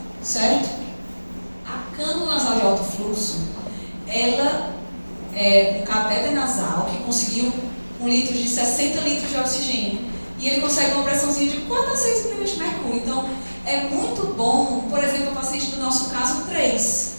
certo? A cânula nasal de alto fluxo, ela é um catéter nasal que conseguiu 1 litro de 60 litros de oxigênio e ele consegue uma pressãozinha de 4 a 6 milímetros de mercúrio. Então, é muito bom, por exemplo, o paciente do nosso caso 3.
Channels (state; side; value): inverted; both; correlation -1.00